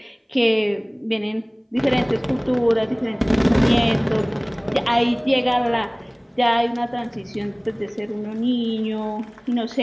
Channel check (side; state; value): both; identical; correlation 1.00